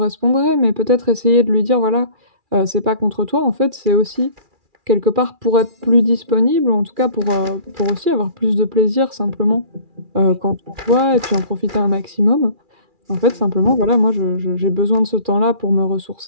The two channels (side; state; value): left; late; 2.4 ms